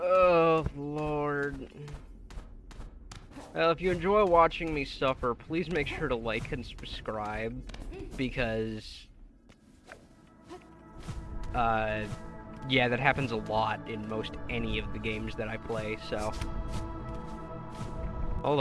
Lord. Well, if you enjoy watching me suffer, please make sure to like and subscribe, because, yeah, that happens a lot in most any of the games that I play, so. Hold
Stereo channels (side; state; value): both; identical; correlation 1.00